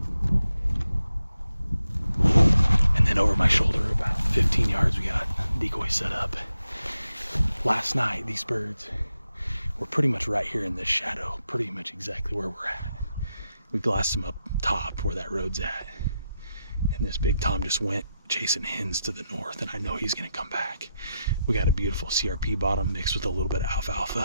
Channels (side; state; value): both; inverted; correlation -0.86